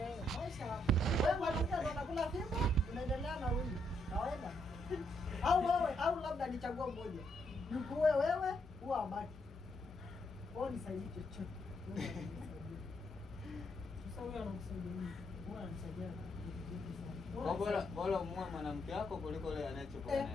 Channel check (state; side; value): normal; both; correlation 0.76